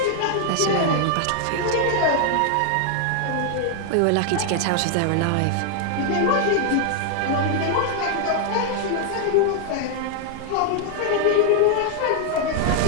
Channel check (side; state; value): both; different; correlation 0.00